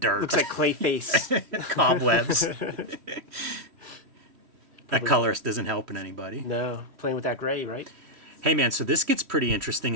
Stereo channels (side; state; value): left; late; 3.1 ms